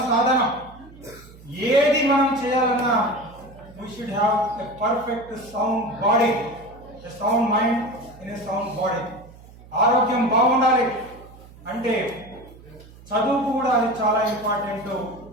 సాధన. ఏది మనం చేయాలన్నా we should have a perfect sound body, a sound mind in a sound body. ఆరోగ్యం బాగుండాలి అంటే చదువుకు కూడా అది చాలా ఇంపార్టెంట్.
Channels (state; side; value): noise; right; hum, 21 dB below the sound